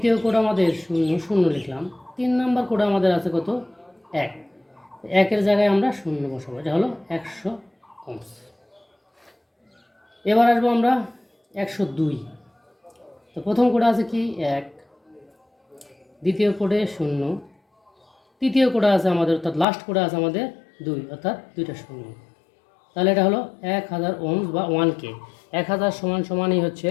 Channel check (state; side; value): drops out; right; at 19.7 s